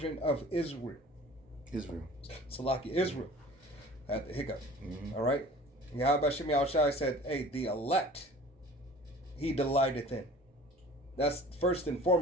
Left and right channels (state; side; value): normal; both; correlation 0.45